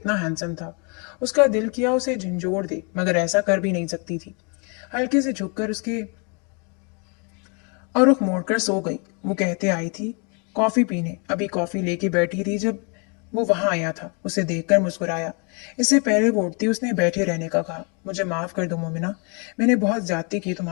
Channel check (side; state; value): right; quieter; 35.1 dB